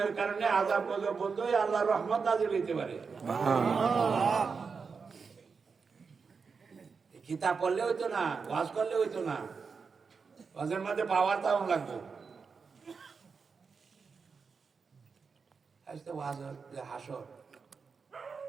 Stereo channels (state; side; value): quieter; left; 5.3 dB